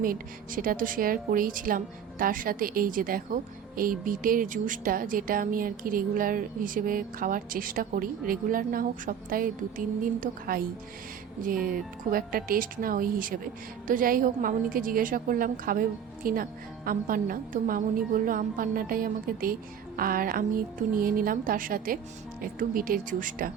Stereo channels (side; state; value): left; quieter; 8.0 dB